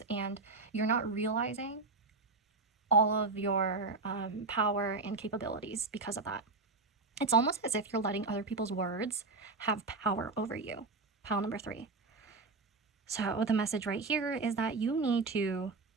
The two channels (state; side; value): quieter; left; 3.8 dB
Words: and you're not realizing all of your power and capabilities because of that. It's almost as if you're letting other people's words have power over you. Pile number 3. So the message right here is that you need to,